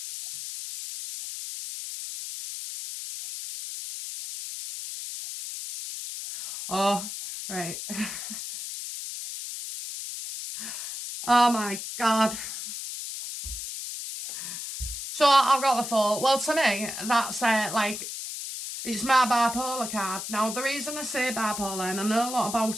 Oh, right. Oh my God. So I've got the thought, well, to me, that's like, it's my bipolar card. Now, the reason I say bipolar, and I know a lot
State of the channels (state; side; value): noise; left; hiss, 7 dB below the sound